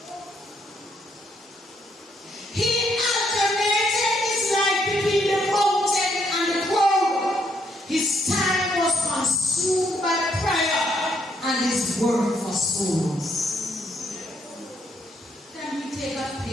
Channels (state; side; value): normal; both; correlation 0.73